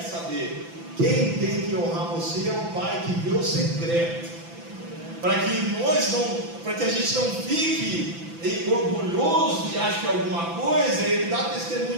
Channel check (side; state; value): left; late; 5.9 ms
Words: saber. Quem tem que honrar você é o Pai que vê o secreto, para que a gente não fique orgulhoso e ache que alguma coisa, ele dá